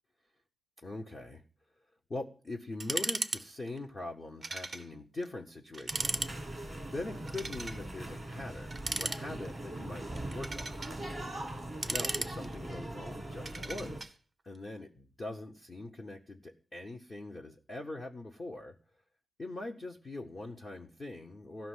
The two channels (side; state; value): both; normal; correlation 0.90